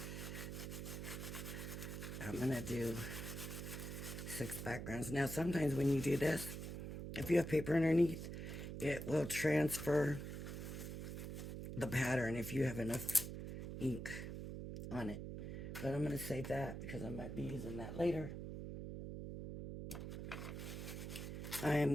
I'm going to do 6 backgrounds. Now, sometimes when you do this, if you have paper underneath, it will transfer the pattern if you have enough ink on it. But I'm going to save that because I might be using that later. I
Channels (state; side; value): noise; right; hum, 6 dB below the sound